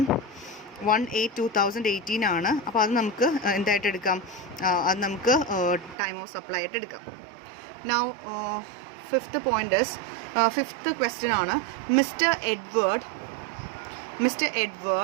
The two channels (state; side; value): drops out; left; at 6.0 s